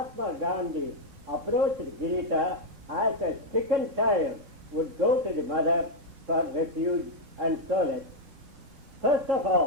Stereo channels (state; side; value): late; left; 4.0 ms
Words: Gandhi approached Girita as a stricken child would go to the mother for refuge and solace. First of